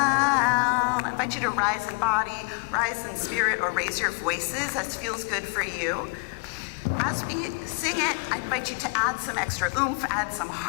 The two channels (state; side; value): quieter; right; 34.7 dB